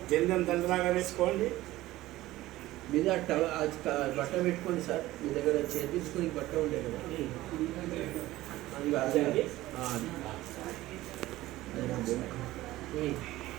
జందం దండలాగా వేసుకోండి. మీద బట్ట పెట్టుకోండి సార్. మీ దగ్గర చేపించుకొని బట్ట ఉండే కదా అది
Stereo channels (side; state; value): left; quieter; 16.7 dB